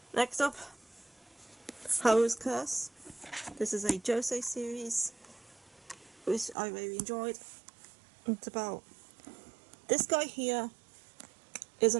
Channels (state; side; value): drops out; left; at 6.6 s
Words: Next up, Haru's Curse. This is a Josei series, which I really enjoyed. It's about this guy here is